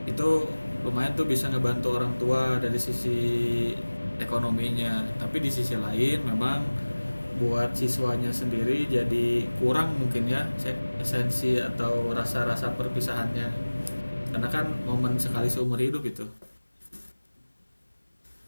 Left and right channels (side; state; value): both; inverted; correlation -1.00